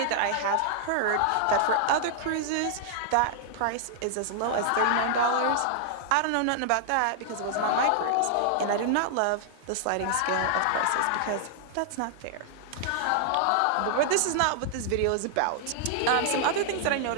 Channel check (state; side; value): different; both; correlation -0.01